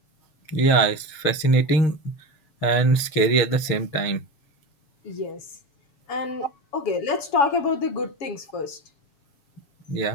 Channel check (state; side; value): late; right; 6.5 ms